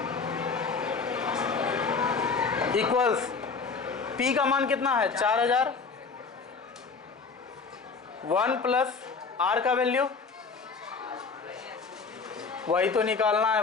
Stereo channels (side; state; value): right; quieter; 4.9 dB